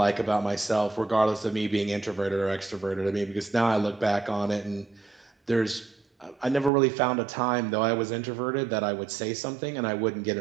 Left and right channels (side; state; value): left; drops out; at 6.7 s